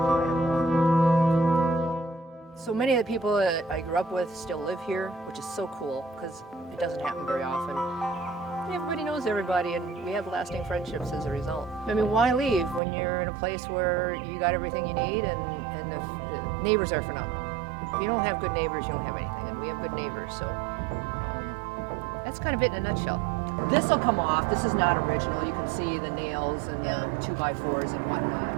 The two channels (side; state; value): left; drops out; at 12.8 s